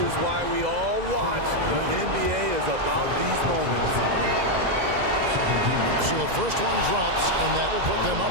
is why we all watch. The NBA is about these moments. So the first one drops, and that will put them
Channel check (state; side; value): late; left; 2.0 ms